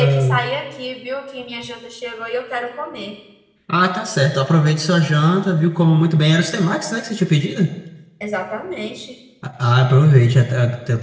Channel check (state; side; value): identical; both; correlation 1.00